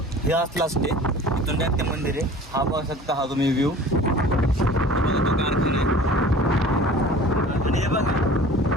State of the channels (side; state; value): both; normal; correlation 0.45